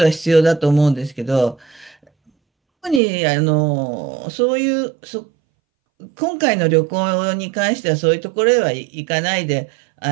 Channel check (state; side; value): drops out; left; at 3.0 s